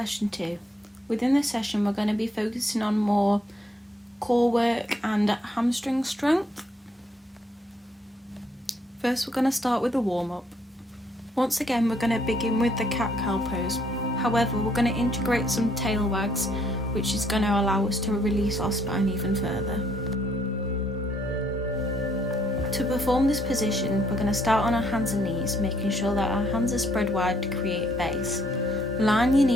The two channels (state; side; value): normal; both; correlation 0.69